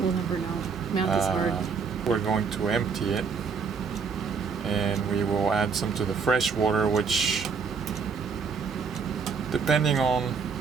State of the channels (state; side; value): quieter; left; 5.6 dB